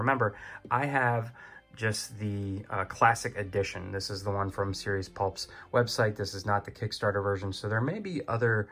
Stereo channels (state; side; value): identical; both; correlation 1.00